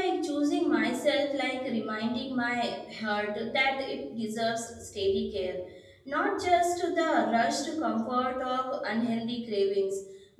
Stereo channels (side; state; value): both; identical; correlation 1.00